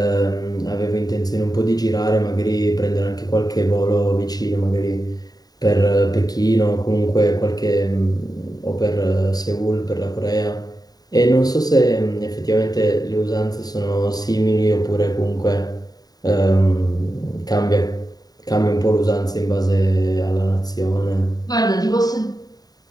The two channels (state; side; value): late; right; 0.18 ms